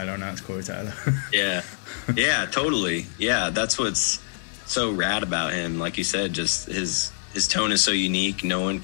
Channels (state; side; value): silent; right; 62 dB below the other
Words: and that's Corey Taylor. Yeah, totally. Yeah, that's what's so rad about him. Like you said, just his tone is so unique. No one